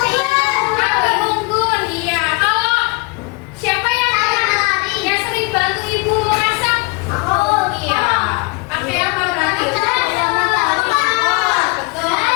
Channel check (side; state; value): right; quieter; 27.5 dB